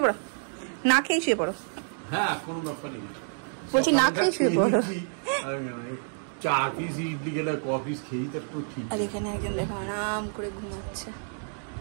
পড়ো, না খেয়ে শুয়ে পড়ো। হ্যাঁ কোনো ব্যাপার নেই, বলছি না খেয়ে শুয়ে পড়ো। চা পিস ইডলি গেলে কফি খেয়েই তো একটু ঠিক। আর এখানে একজন দেখো আরাম করে ঘুমাচ্ছে।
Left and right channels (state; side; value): silent; left; 59 dB below the other